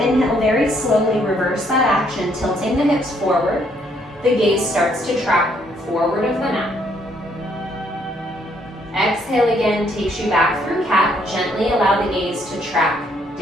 very slowly reverse that action, tilting the hips forward. The gaze starts to track forward of the mat. Exhale again, takes you back through cat. Gently allow the gaze to track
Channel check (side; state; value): both; normal; correlation 0.69